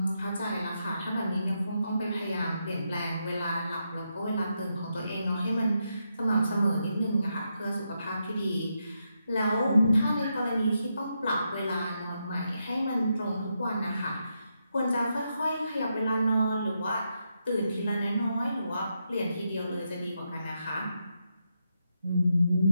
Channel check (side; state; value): both; inverted; correlation -0.83